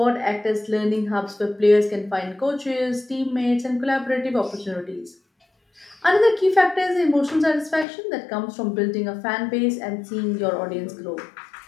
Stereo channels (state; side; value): drops out; right; at 7.9 s